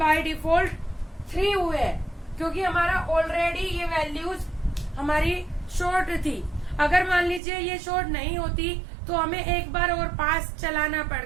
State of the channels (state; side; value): drops out; left; at 7.4 s